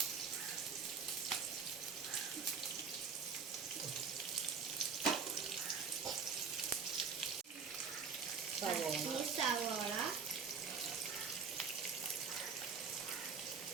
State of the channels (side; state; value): left; quieter; 5.9 dB